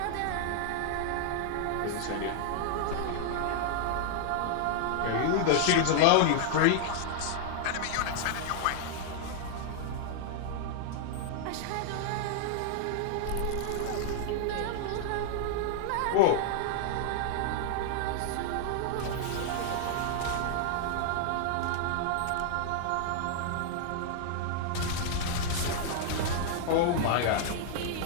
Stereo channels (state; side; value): different; both; correlation 0.00